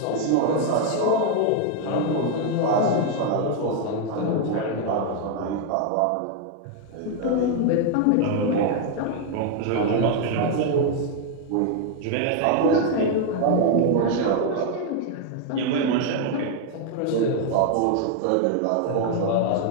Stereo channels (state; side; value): different; both; correlation 0.00